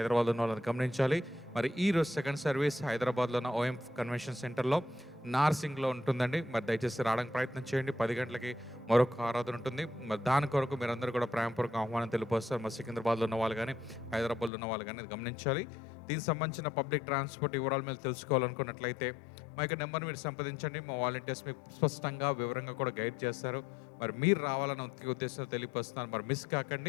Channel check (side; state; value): right; drops out; at 14.5 s